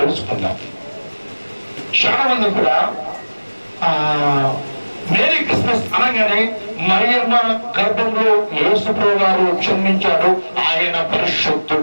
చాలా మంది కూడా మేరీ క్రిస్మస్ అనగానే మరియమ్మ గర్భంలో యేసుప్రభువు గారు జన్మించాడు, ఆయన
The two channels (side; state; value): both; inverted; correlation -1.00